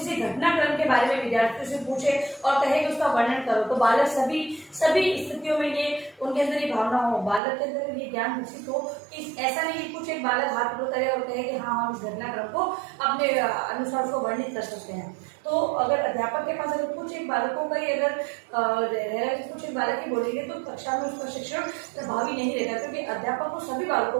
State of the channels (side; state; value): left; drops out; at 7.4 s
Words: घटनाक्रम के बारे में विद्यार्थियों से पूछे और कहे कि उसका वर्णन करो, तो बालक सभी स्थितियों में ये उनके अंदर ये भावना हो, बालक के अंदर ये ज्ञान विकसित हो कि ऐसा नहीं कि कुछ एक बालक हाथ ऊपर करे और कहे कि हाँ हम इस घटनाक्रम को अपने अनुसार उसको वर्णित कर सकते हैं। तो अगर अध्यापक के पास अगर कुछ एक बालकों का ही अगर कुछ एक बालक ही बोलेंगे तो कक्षा में उसका शिक्षण प्रभावी नहीं रहेगा, क्योंकि अध्यापक को सभी बालकों